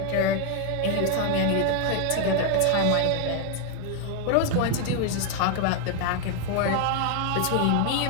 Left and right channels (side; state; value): both; different; correlation 0.00